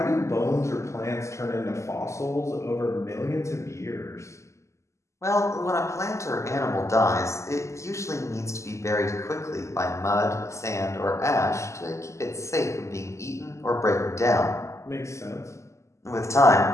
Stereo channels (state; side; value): late; right; 0.14 ms